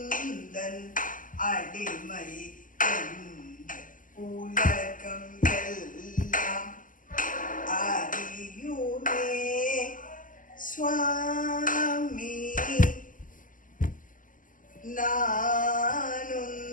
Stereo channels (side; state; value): right; late; 0.39 ms